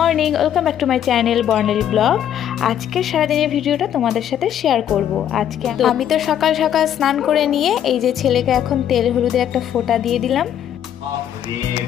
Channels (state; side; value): quieter; right; 10.1 dB